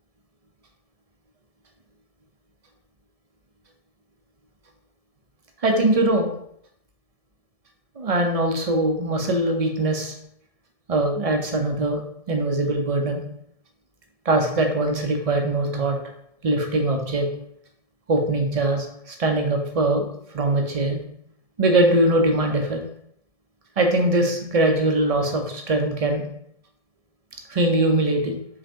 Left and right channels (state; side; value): late; left; 1.7 ms